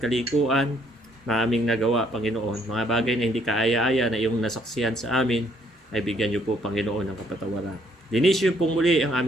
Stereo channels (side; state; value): both; normal; correlation 0.67